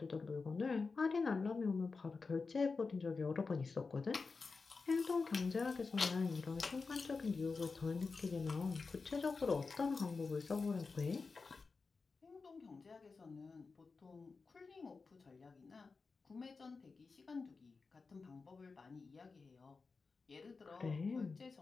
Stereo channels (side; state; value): right; quieter; 4.4 dB